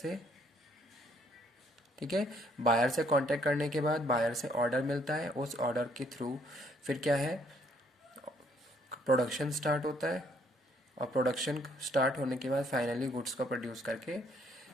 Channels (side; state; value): both; normal; correlation 0.66